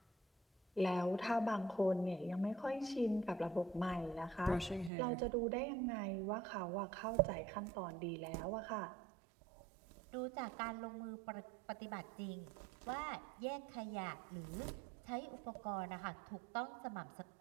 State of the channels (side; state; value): left; drops out; at 4.9 s